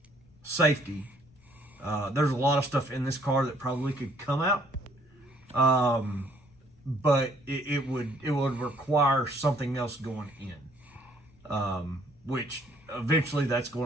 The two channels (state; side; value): noise; left; rumble, 29 dB below the sound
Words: safety, there's a lot of stuff in this car that probably could come out. But it would require something else going in, which eventually that's